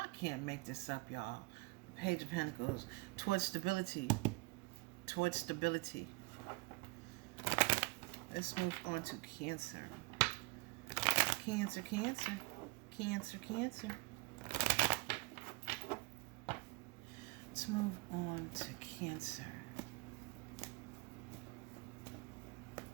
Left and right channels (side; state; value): left; quieter; 25.5 dB